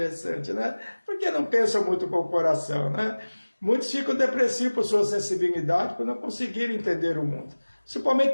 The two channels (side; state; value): both; inverted; correlation -1.00